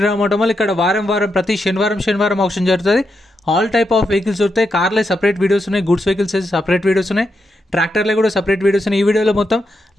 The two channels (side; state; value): both; normal; correlation 0.84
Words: ఆటోమల్. ఇక్కడ వారం ప్రతి శనివారం ఆప్షన్ జరుగుతుంది. ఆల్ టైప్ ఆఫ్ వెహికల్స్ దొరుకుతాయి. కార్లే సపరేట్ వీడియోస్ ఉన్నాయి, గుడ్స్ వెహికల్స్ సపరేట్ వీడియోస్ ఉన్నాయి, ట్రాక్టర్లే కూడా సపరేట్ వీడియోస్ ఉన్నాయి. ఈ వీడియోలో మొత్తం